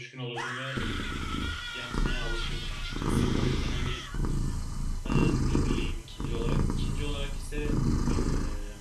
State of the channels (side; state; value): both; identical; correlation 1.00